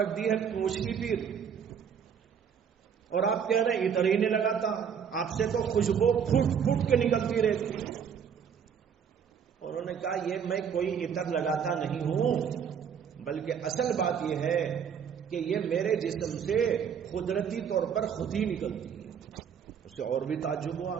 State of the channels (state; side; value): quieter; left; 7.5 dB